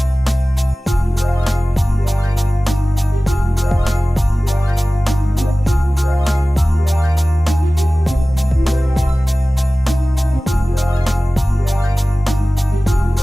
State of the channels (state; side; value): normal; both; correlation 0.97